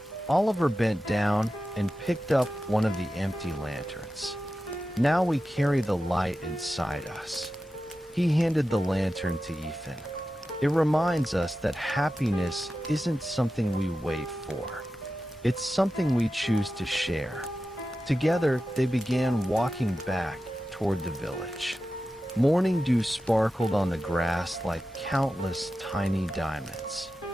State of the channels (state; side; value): normal; both; correlation 0.92